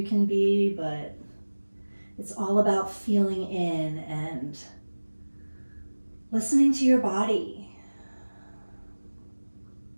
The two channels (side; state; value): both; inverted; correlation -1.00